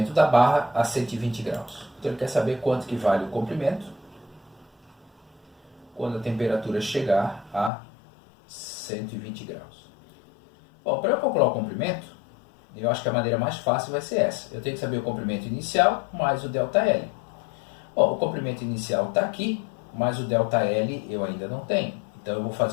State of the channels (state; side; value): drops out; right; at 7.7 s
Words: da barra a 120 graus. Então ele quer saber quanto que vale o comprimento quando a temperatura chegar a 120 graus. Bom, para eu calcular o comprimento, eu acho que a maneira mais fácil vai ser essa. Eu tenho que saber o comprimento inicial mais o ΔL. Bom, o comprimento inicial está aqui, mas o ΔL eu ainda não tenho. Então eu vou